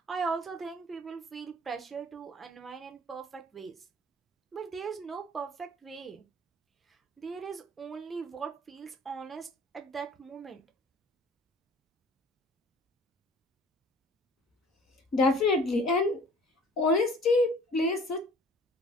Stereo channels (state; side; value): normal; both; correlation 0.50